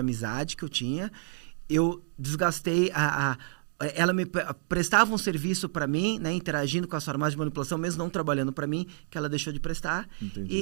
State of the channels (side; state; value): left; silent; digital silence